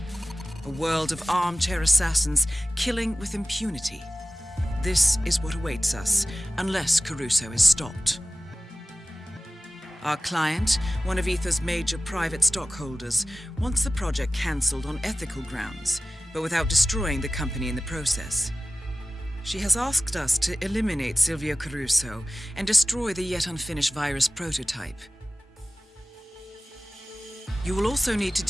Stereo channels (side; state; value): both; normal; correlation 0.97